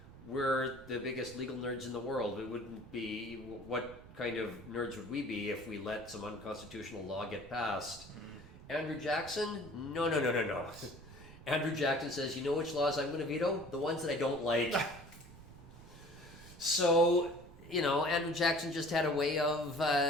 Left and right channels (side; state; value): right; noise; rumble, 19 dB below the sound